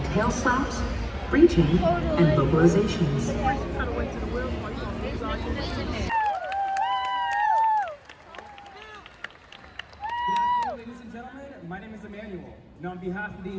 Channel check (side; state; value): both; identical; correlation 1.00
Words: tail slaps, breaching, and vocalizations. Ladies and gentlemen, my name is Emmanuel, and on behalf of the